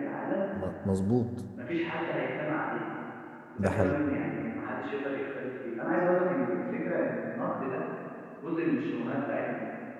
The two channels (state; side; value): identical; both; correlation 1.00